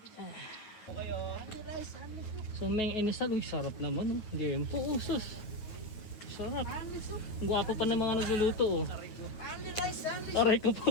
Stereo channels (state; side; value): late; right; 9.4 ms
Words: So, Meng Inisal, uy, sarap naman, oh. Game po, oh, sus. Sarap. Gwapo pa ng mga nagluluto, oh. Aray ko